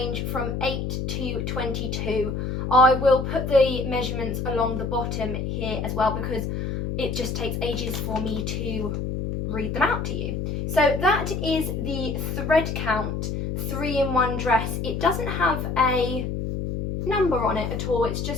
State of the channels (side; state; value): left; noise; hum, 3 dB below the sound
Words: from 8 to 22. I will put the measurements along the bottom here as well, because it just takes ages for me to read them out to you. So that is the thread count 3-in-1 dress. It doesn't have a number on it at all, it's